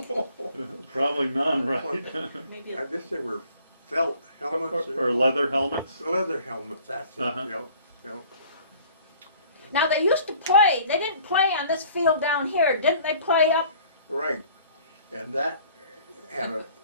Probably none, right? Maybe I guess they were felt helmets. Or leather helmets? Leather helmets, that's it, Uh-huh. yep. Now they used to play, they didn't play on this field down here, didn't they play up? Right, and that had an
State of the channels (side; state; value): both; inverted; correlation -0.53